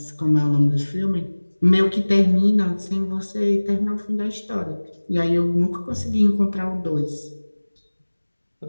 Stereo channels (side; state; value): both; inverted; correlation -1.00